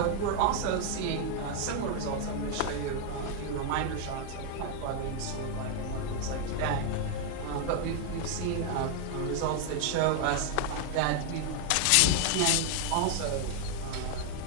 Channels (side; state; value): both; different; correlation 0.00